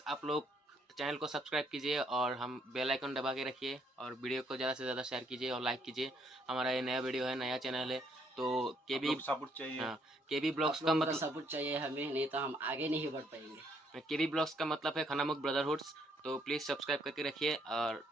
आप लोग चैनल को सब्सक्राइब कीजिए और हम बेल आइकन दबा के रखिए और वीडियो को ज़्यादा से ज़्यादा शेयर कीजिए और लाइक कीजिए। हमारा ये नया वीडियो है, नया चैनल है, तो केबी सपोर्ट चाहिए। हाँ, केबी ब्लॉग्स का मतलब सपोर्ट चाहिए हमें, नहीं तो हम आगे नहीं बढ़ पाएंगे। केबी ब्लॉग्स का मतलब है खनामुख ब्रदरहुड्स। तो प्लीज़ सब्सक्राइब करके रखिए और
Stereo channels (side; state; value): both; normal; correlation 0.69